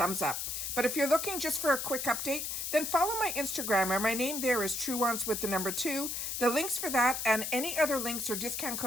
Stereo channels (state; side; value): noise; left; hiss, 3 dB below the sound